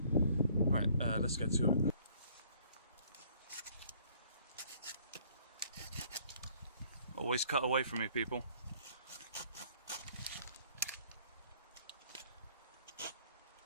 Right, let's get to it. Always cut away from me, people.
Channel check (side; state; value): both; inverted; correlation -0.59